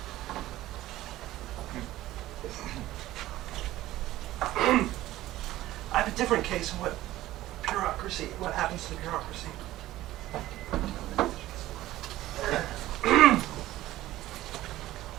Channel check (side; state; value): left; quieter; 15.5 dB